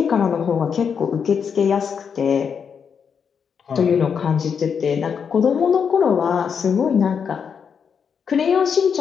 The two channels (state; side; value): quieter; right; 6.8 dB